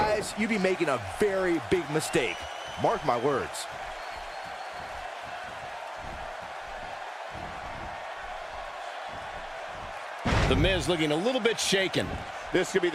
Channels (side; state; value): both; identical; correlation 1.00